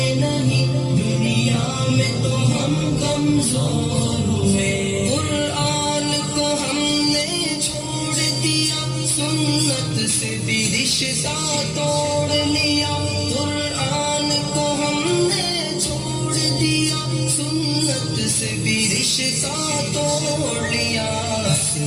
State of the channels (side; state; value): both; identical; correlation 1.00